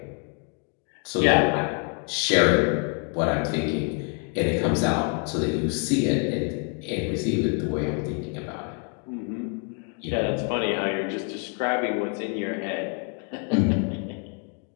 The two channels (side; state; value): right; quieter; 38.4 dB